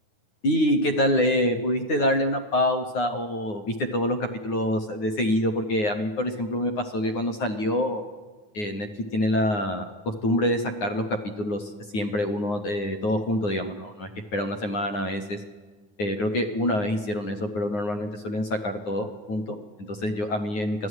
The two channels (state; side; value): late; right; 9.6 ms